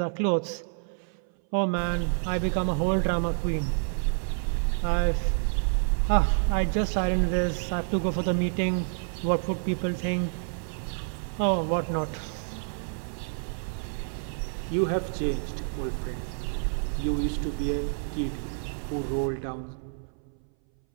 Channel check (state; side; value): silent; left; 59 dB below the other